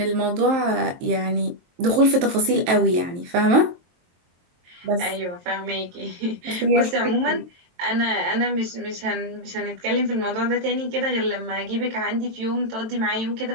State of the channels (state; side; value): late; left; 23 ms